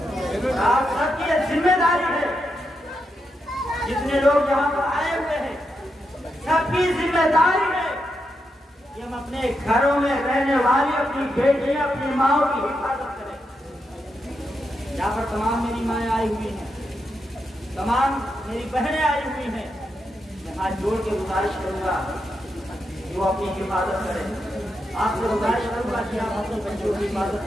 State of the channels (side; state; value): both; normal; correlation 0.84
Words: آپ سب کی یہ ذمہ داری ہے، جتنے لوگ یہاں پر آئے ہوئے ہیں سب کی ذمہ داری ہے کہ ہم اپنے گھروں میں رہنے والی اپنی بیٹیاں اپنی ماؤں کی حفاظت کریں۔ یہاں پر تمام میری مائیں آئی ہوئی ہیں، تمام میری بہنیں آئی ہوئی ہیں، میں ہاتھ جوڑ کے گزارش کروں گا کہ وہ اپنی حفاظت کریں۔ آپ سے گزارش کروں گا کہ آپ اپنے بچوں کی حفاظت